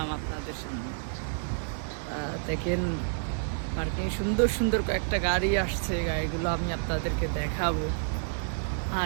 আপনাদের সামনে। দেখেন, পার্কিং সুন্দর সুন্দর কয়েকটা গাড়ি আসছে, গাড়িগুলো আমি আপনাদেরকে দেখাবো।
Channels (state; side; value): silent; left; 58 dB below the other